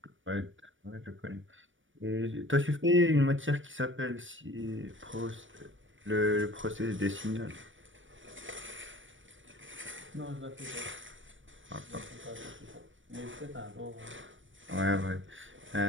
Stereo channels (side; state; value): left; late; 0.56 ms